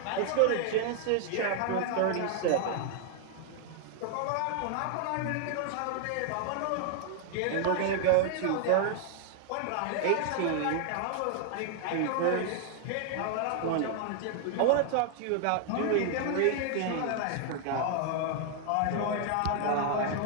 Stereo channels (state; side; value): different; both; correlation 0.00